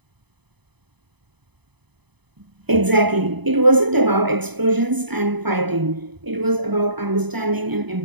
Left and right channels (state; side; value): late; left; 0.99 ms